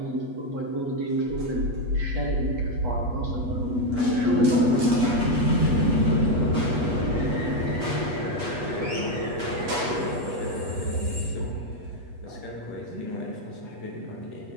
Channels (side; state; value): left; late; 8.2 ms